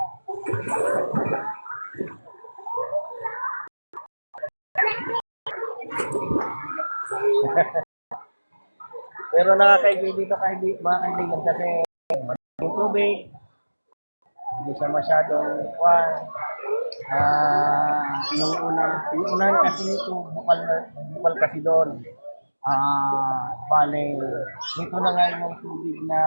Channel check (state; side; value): inverted; both; correlation -1.00